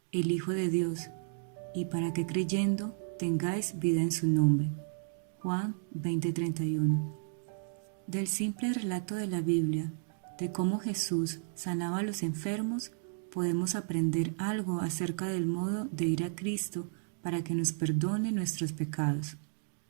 el Hijo de Dios, y para que creyendo tengáis vida en su nombre. Juan 20:31. Del simple relato de la Biblia, de cómo Jesús sanaba a los enfermos, podemos aprender algo acerca del modo de ir a Cristo para que nos perdone nuestros pecados.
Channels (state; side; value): silent; left; digital silence